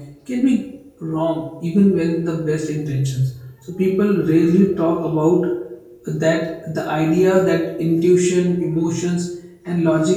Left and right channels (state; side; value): identical; both; correlation 1.00